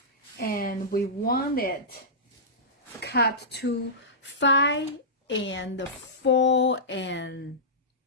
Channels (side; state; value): both; normal; correlation -0.16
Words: and we want it cut to 5 and 4.5,